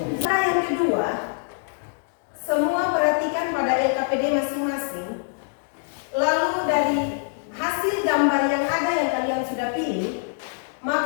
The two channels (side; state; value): right; silent; digital silence